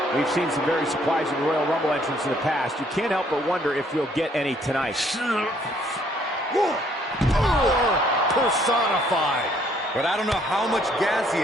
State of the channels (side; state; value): both; normal; correlation 0.65